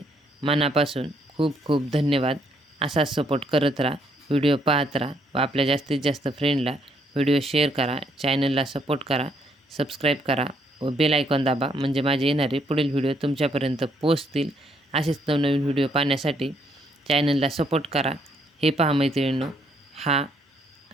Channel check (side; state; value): both; normal; correlation 0.71